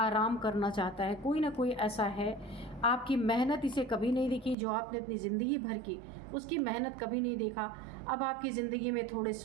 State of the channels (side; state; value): left; drops out; at 4.5 s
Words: करना चाहता है। कोई ना कोई ऐसा है, आपकी मेहनत इसे कभी नहीं देखी, जो आपने अपनी ज़िंदगी भर की उसकी मेहनत कभी नहीं देखा। अब आपकी ज़िंदगी में थोड़े